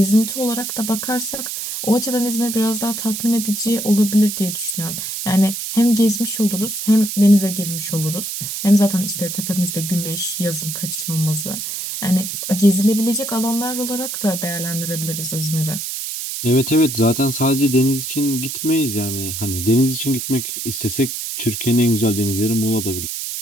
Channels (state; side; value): noise; right; hiss, 5 dB below the sound